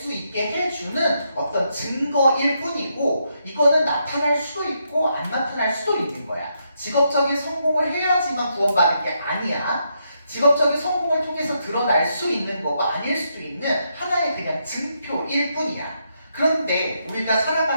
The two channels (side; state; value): both; inverted; correlation -0.79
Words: 있게 해주는 어떤 증거일 뿐이고 이거는 나타날 수도 있고 안 나타날 수도 있는 거야. 직업적인 성공을 해야지만 구원받는 게 아니야. 직업적인 성공을 통해서 드러날 수 있는 거고 아닐 수도 있는 하나의 그냥 증표일 뿐이야. 그런데 우리가